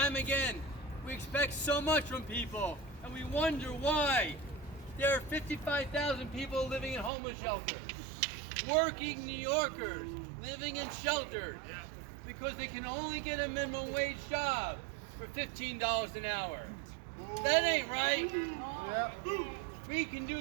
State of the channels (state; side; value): drops out; left; at 7.1 s